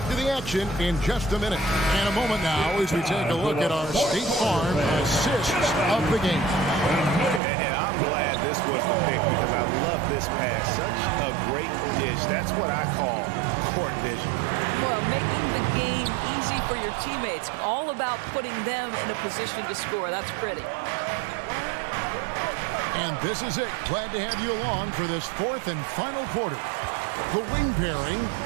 to the action in just a minute. And a moment now as we take a look at our State Farm assists of the game. And I'm glad this was the pick because I love this pass. Such a great dish. That's what I call court vision. Well, making the game easy for your teammates. All about putting them in a position to score. That's pretty. And this is it. Glad to have you along for this fourth and final quarter. The wing pairing,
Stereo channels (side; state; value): left; drops out; at 7.4 s